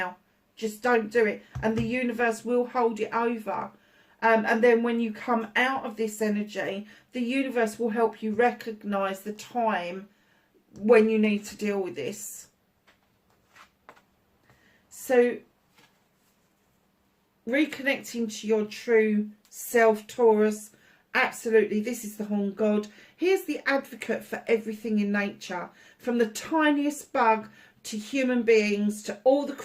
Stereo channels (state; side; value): identical; both; correlation 1.00